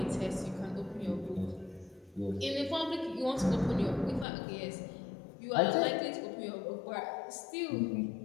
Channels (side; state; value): right; drops out; at 4.2 s